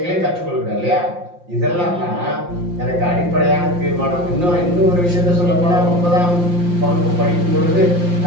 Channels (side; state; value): left; late; 5.7 ms